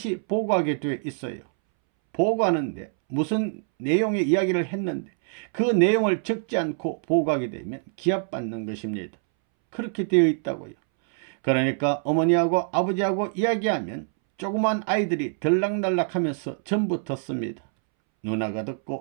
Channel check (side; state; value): left; silent; 62 dB below the other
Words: 보고하게 되어 있어요. 보고하는데 무슨 내용의 이야기를 했는데 그 내용을 적지 않고 보고하게 되면 기합받는 것입니다. 그렇게 되어 있다고요. 그러니까 어머니하고 아버지하고 이야기하면 조그만 아이들이 들락날락하면서 전부 듣습니다. 누나가